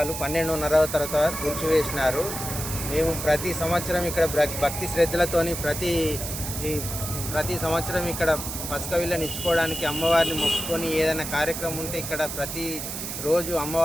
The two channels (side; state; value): right; noise; hiss, 6 dB below the sound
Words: 12:30 తర్వాత కూల్చివేసినారు. మేము ప్రతి సంవత్సరం ఇక్కడ భక్తి శ్రద్ధలతోని ప్రతి సంవత్సరం ఇక్కడ పసుక విళ్ళని ఇచ్చుకోవడానికి అమ్మవారిని మొక్కుకొని ఏదైనా కార్యక్రమం ఉంటే ఇక్కడ ప్రతి రోజు